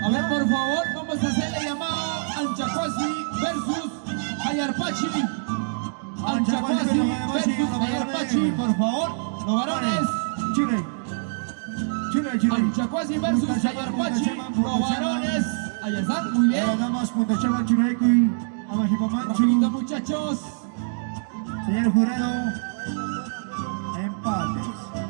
A ver, por favor, vamos a hacerle llamado Anchacuasi versus Ayarpachi. Anchacuasi versus Ayarpachi, por favor. Los varones. Chile. Anchacuasi versus Ayarpachi. Los varones. Ahí están, muy bien. Las damas, Punta Chama, Churaicuy, Amajipa Rapidito, Manchu. muchachos. Señor jurado, empates.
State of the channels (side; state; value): left; silent; digital silence